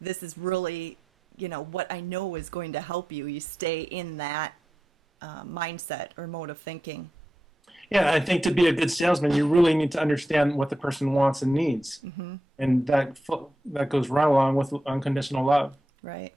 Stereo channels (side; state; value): both; normal; correlation 0.88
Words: is really, what I know is going to help you. You stay in that mindset or mode of thinking. Yeah, I think to be a good salesman, you really need to understand what the person wants and needs, and that goes right along with unconditional love. Right.